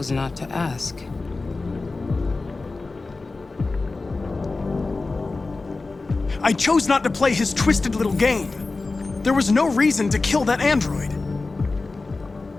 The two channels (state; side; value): quieter; right; 3.6 dB